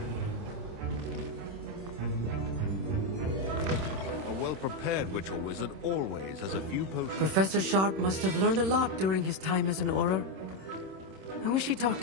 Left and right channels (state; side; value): late; left; 26 ms